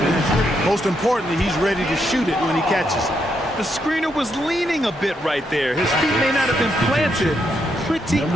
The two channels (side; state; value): both; normal; correlation 0.79